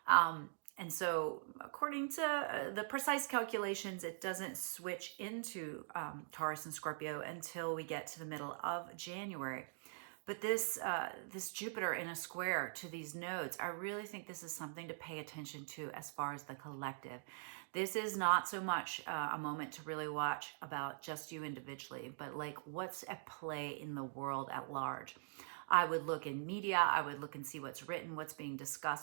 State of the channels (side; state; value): left; silent; digital silence